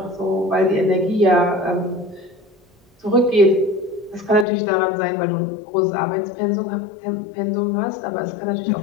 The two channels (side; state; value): right; drops out; at 4.5 s